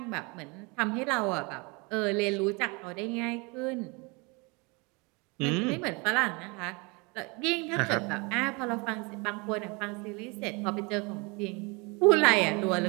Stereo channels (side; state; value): left; quieter; 28.8 dB